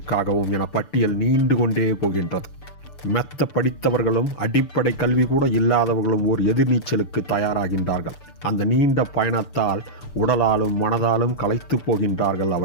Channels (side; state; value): right; late; 6.8 ms